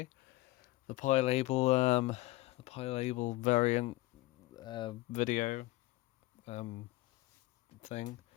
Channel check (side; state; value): right; quieter; 19.3 dB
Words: label variant video thing.